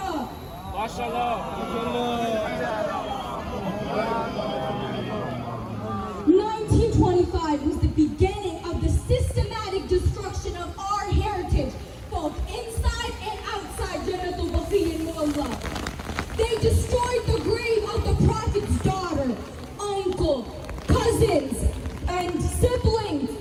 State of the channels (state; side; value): identical; both; correlation 1.00